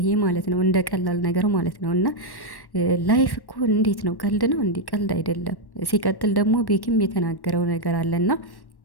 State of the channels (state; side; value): late; right; 1.1 ms